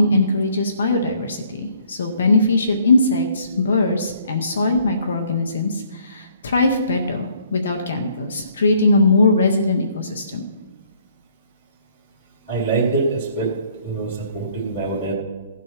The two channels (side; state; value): both; inverted; correlation -0.63